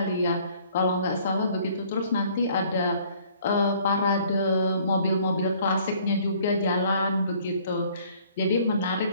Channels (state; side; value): inverted; both; correlation -0.58